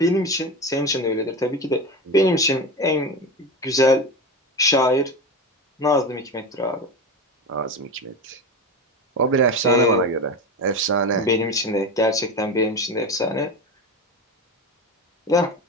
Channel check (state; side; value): normal; both; correlation 0.23